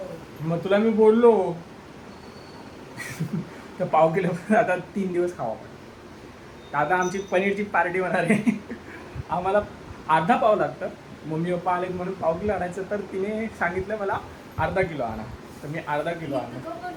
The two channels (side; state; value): both; identical; correlation 1.00